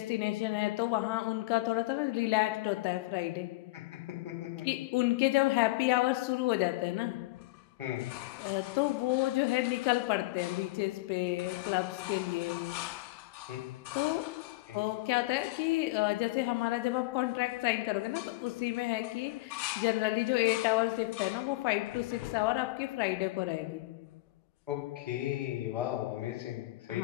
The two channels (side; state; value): right; quieter; 20.2 dB